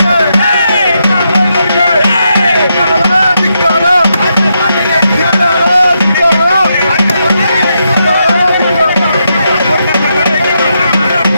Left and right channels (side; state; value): both; inverted; correlation -0.82